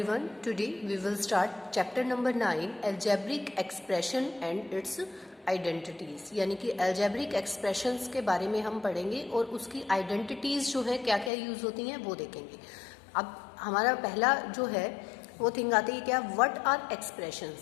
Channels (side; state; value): right; drops out; at 11.3 s